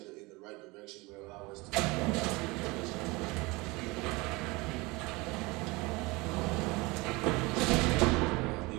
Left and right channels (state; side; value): quieter; left; 24.2 dB